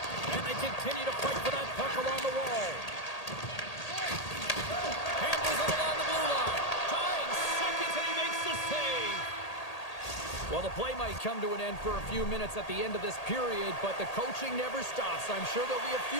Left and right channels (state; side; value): late; right; 1.8 ms